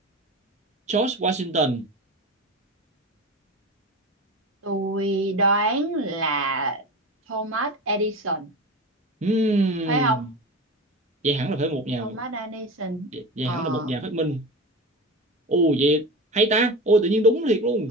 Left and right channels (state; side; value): normal; both; correlation 0.28